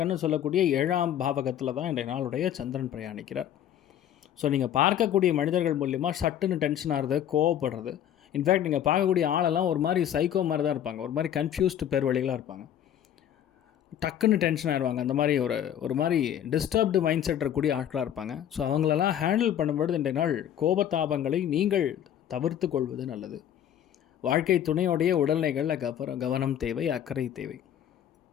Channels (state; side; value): quieter; right; 10.3 dB